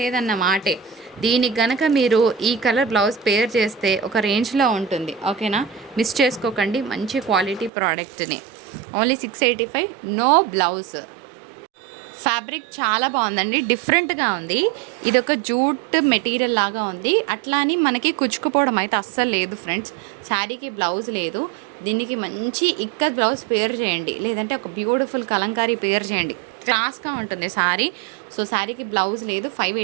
మాటే. దీనికి గనక మీరు ఈ కలర్ బ్లౌజ్ పేర్ చేస్తే ఒక రేంజ్లో ఉంటుంది, ఓకేనా? మిస్ చేసుకోకండి, మంచి క్వాలిటీ ప్రోడక్ట్ని. Only 685, no blouse. ఫ్యాబ్రిక్ చాలా బాగుందండి, డిఫరెంట్గా ఉంది. ఇది ఒక జూట్ మెటీరియల్ లాగా ఉంది, అట్లా అని మనకి కుచ్చుకుపోవడం అయితే అస్సలు లేదు ఫ్రెండ్స్. శారీకి బ్లౌజ్ లేదు, దీనికి మంచి ఇక్కత్ బ్లౌజ్ పేర్ చేయండి, లేదంటే ఒక బ్యూటిఫుల్ కలంకారీ పేర్ చేయండి, క్లాస్గా ఉంటుంది శారీ. సో శారీకి బ్లౌజ్ లేదు,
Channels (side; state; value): left; drops out; at 7.7 s